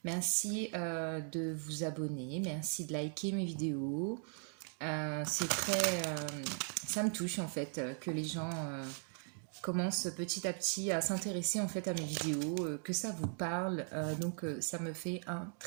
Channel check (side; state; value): left; silent; 52 dB below the other